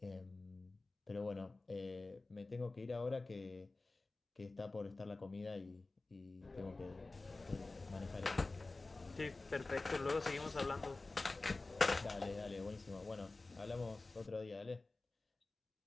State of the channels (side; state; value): right; quieter; 3.3 dB